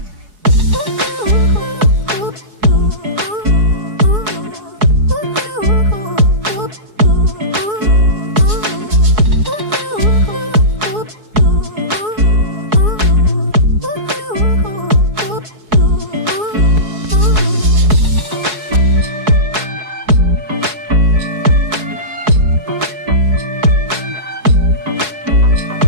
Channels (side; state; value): left; late; 4.7 ms